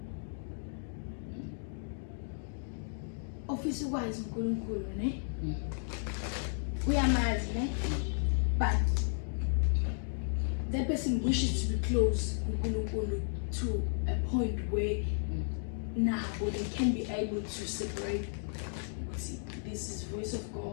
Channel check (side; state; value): right; silent; digital silence